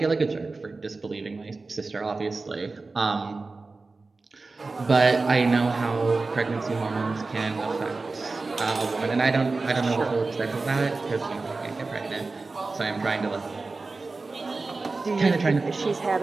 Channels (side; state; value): left; quieter; 3.7 dB